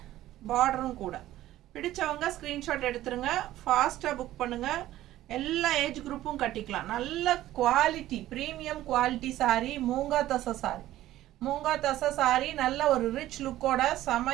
பார்டரும் கூட. பிடிச்சவங்க ஸ்க்ரீன்ஷாட் எடுத்துருங்க, ஃபாஸ்ட்டாக புக் பண்ணுங்கள். எல்லா ஏஜ் குரூப்பும் கட்டிக்கலாம். நல்ல quality, premium quality sari. Moonga தசை சாரீ. நல்ல ஒரு ரிச் லுக்கோட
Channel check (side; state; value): left; quieter; 14.5 dB